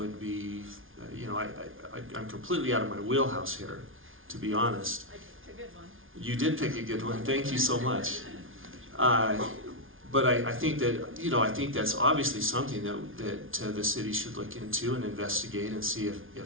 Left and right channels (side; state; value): left; late; 0.58 ms